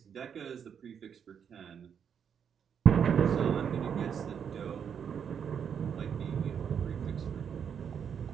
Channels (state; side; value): quieter; left; 7.7 dB